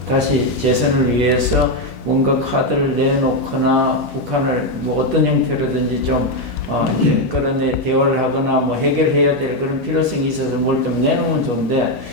다시 재선을 위해서 뭔가 카드를 내놓거나 북한을 어떤 형태로든지 좀 그런 대화를 하거나 해결해야 될 그런 필요성이 있어서 뭘 좀 내놓으면 좋은데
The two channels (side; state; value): right; late; 5.1 ms